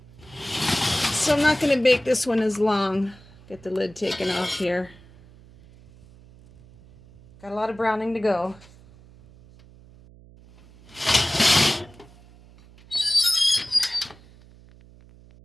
So I'm not going to bake this one as long. Get the lid taken off here. Got a lot of browning to go.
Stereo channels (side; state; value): right; noise; hum, 24 dB below the sound